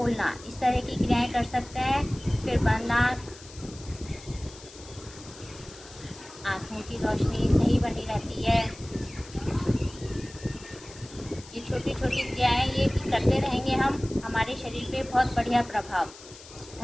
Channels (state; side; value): noise; left; hiss, 19 dB below the sound